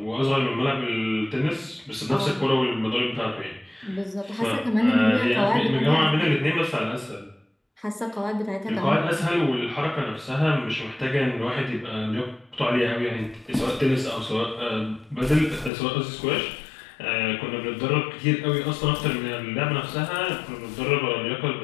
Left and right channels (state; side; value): drops out; right; at 15.7 s